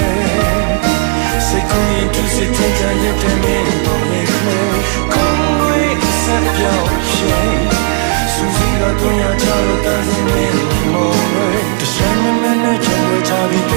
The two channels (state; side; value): quieter; left; 38.4 dB